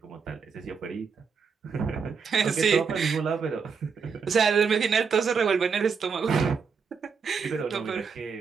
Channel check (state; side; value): quieter; left; 5.8 dB